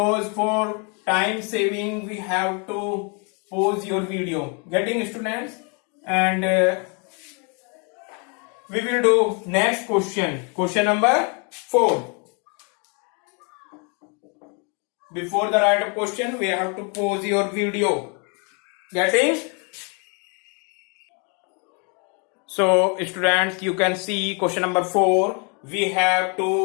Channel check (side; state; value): right; quieter; 35.4 dB